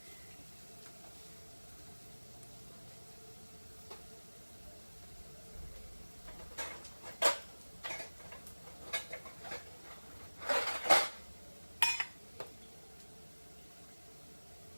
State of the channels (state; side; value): inverted; both; correlation -1.00